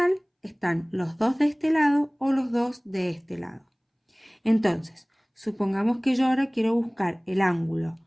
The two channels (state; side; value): identical; both; correlation 1.00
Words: están los dos de este lado o los dos de este lado. Entonces, supongamos que yo ahora quiero buscar el ángulo